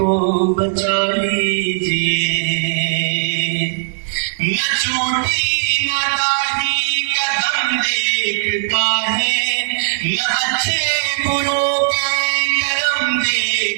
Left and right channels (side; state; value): left; silent; digital silence